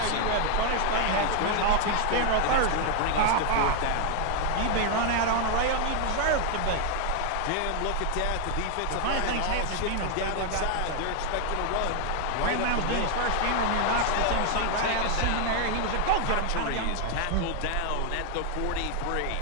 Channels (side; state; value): both; different; correlation 0.00